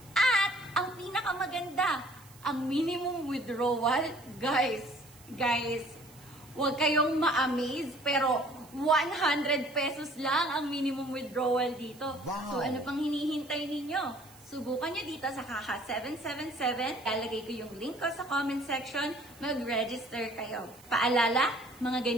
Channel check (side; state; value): right; noise; hiss, 23 dB below the sound